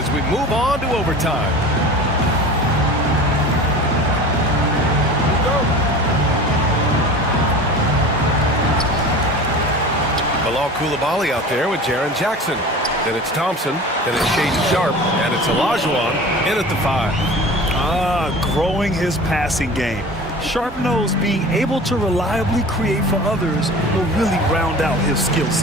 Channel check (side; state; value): both; normal; correlation 0.37